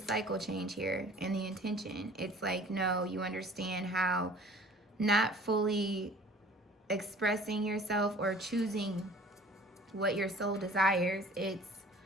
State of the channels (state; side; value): normal; both; correlation 0.48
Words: change here and the intention. It's like, no, you understand how not fully expressing yourself or choosing what your soul desires, it's